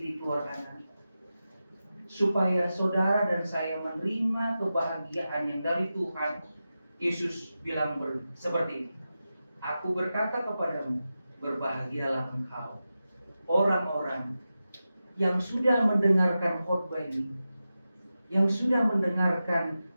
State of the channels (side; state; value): both; inverted; correlation -0.92